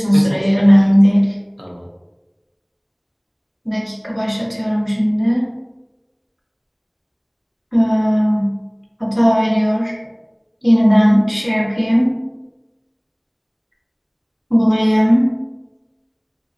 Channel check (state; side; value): identical; both; correlation 1.00